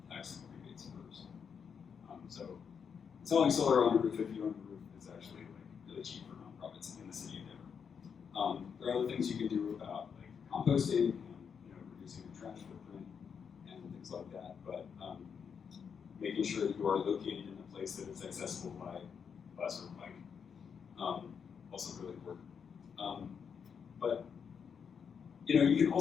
tax rebates first. So installing solar on a roof if you own the roof is actually like really cheap for nonprofits in the city of Denver. There are other things you can do about like composting and reducing the trash footprint and things like that, but making sure that you are located in a place that is accessible by bus or bike, also really important. But you can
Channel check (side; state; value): right; quieter; 6.8 dB